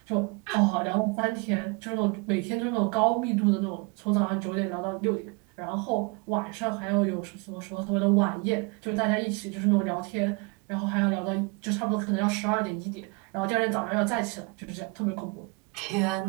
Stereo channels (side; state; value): left; quieter; 29.8 dB